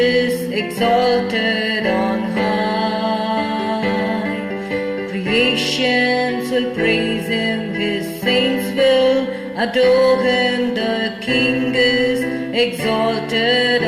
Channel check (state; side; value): identical; both; correlation 1.00